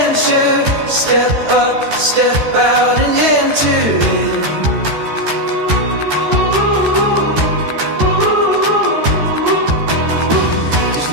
Step up, step out and enter in. There's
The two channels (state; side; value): late; left; 14 ms